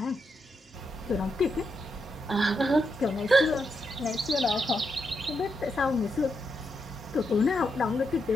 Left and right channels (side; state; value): both; normal; correlation 0.83